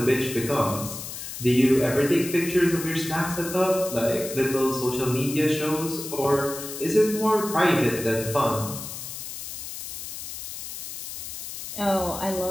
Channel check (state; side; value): noise; left; hiss, 9 dB below the sound